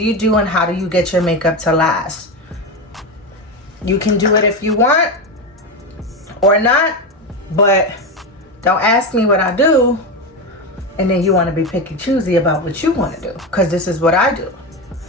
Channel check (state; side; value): normal; both; correlation 0.16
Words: you do and how do you get your makeup to last? You can do it if you want or not, but don't ask me what I do and then you want to be picky choosy about what you want to do, because this is what I do